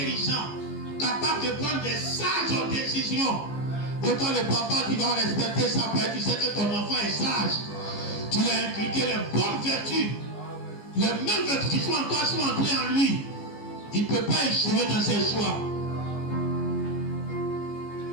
capable de prendre des sages décisions. Et toi, le papa, tu vas respecter ça parce que tu sais que ton enfant est sage. Tu lui as inculqué les bonnes vertus. Les mêmes vertus qui sont en toi sont entrées en lui. Il ne peut pas échouer dans ses choix.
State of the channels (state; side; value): late; right; 15 ms